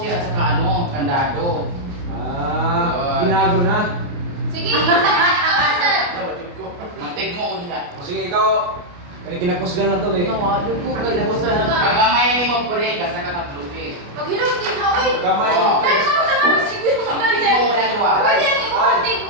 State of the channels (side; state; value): left; late; 29 ms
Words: at saka ano, kandado. Ah, binago na. Sige, saan? Mantig mo ulit. O sige, ikaw. Kinakusgan na to eh. Nawado ko kay Bosa na. Kagamay ni mo pure, kasi katatrupi. Pag hilong din na, oy. Kamay. Oo. Dahil ako sa mga siguro mga Mantig mo ulit duwa. Pwede ang imuhatig